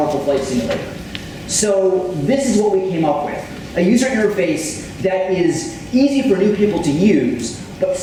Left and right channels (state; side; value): identical; both; correlation 1.00